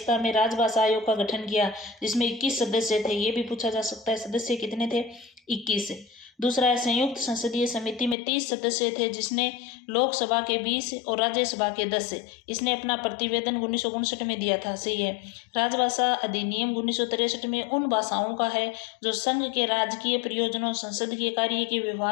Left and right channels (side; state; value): right; drops out; at 8.2 s